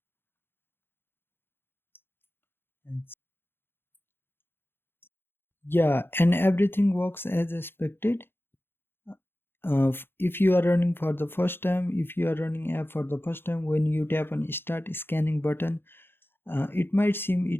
And yeah, and everything works as expected. If you are running for the first time, if you are running app for the first time, when you tap on start scanning button, it might seem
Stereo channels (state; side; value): late; right; 0.10 ms